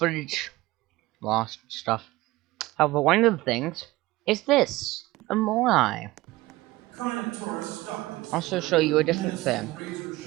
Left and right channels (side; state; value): left; quieter; 19.1 dB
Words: lost stuff. However, one of the things is this. A Moai. Also show you a different thing.